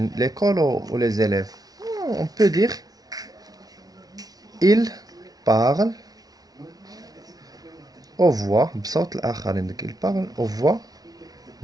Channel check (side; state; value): left; late; 0.18 ms